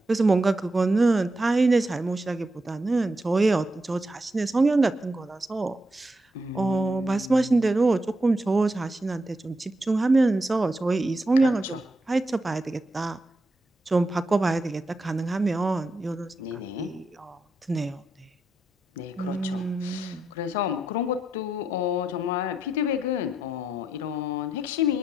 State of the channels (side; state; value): both; normal; correlation 0.83